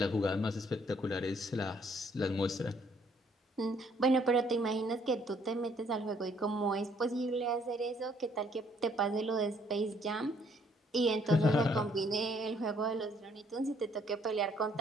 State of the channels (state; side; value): normal; both; correlation 0.65